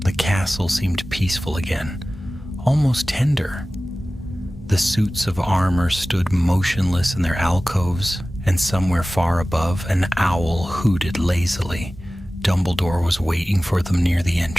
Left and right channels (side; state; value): both; normal; correlation 0.97